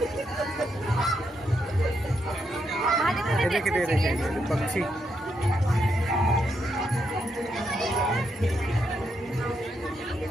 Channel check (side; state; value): both; normal; correlation 0.80